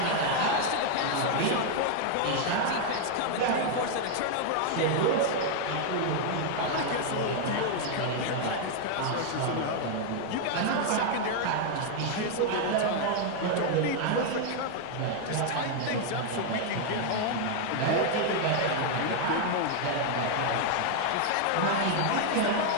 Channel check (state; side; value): different; both; correlation 0.00